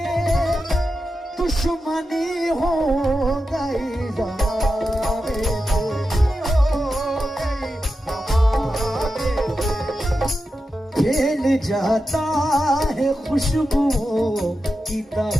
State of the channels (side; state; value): both; normal; correlation 0.90